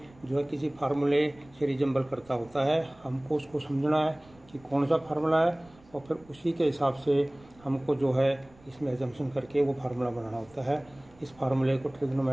जो है किसी फार्मूले से रिजेंबल करता होता है। हमको उसको समझना है कि कौन सा फार्मूला है और फिर उसी के हिसाब से हमको जो है इसमें एजम्पशन करके वो फार्मूला बनाना होता है। इस फार्मूले को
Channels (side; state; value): right; noise; rumble, 27 dB below the sound